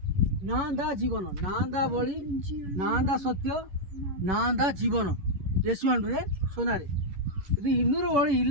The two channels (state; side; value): late; left; 11 ms